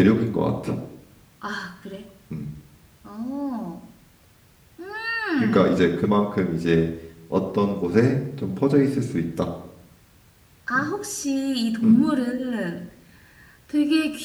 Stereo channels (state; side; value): identical; both; correlation 1.00